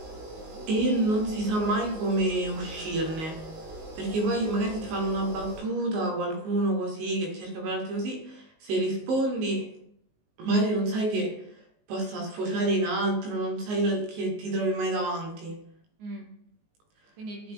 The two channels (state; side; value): late; left; 19 ms